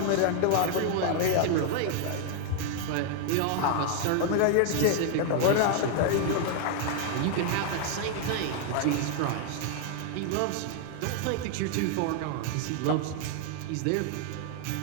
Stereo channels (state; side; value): different; both; correlation 0.00